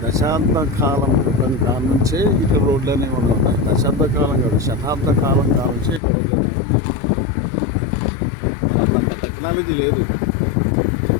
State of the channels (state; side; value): drops out; right; at 6.0 s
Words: దశాబ్ద కాలం క్రితం కాలం నుంచే ఇక్కడ రోడ్లు అనేవి ఉన్నాయి. దశాబ్ద కాలం కాదు, శతాబ్ద కాలం నుంచే ఇక్కడ రోడ్లు అనేవి ఉన్నాయి. మరి అప్పుడు అంత టెక్నాలజీ లేదు.